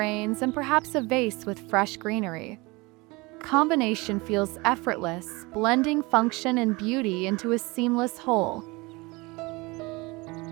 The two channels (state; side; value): quieter; left; 24.6 dB